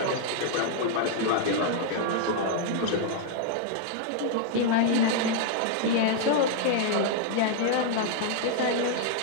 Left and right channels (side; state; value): both; different; correlation -0.01